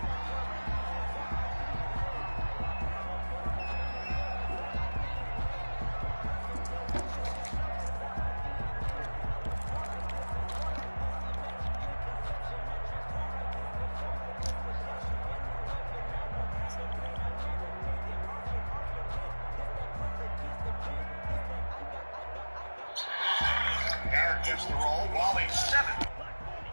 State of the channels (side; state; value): both; inverted; correlation -1.00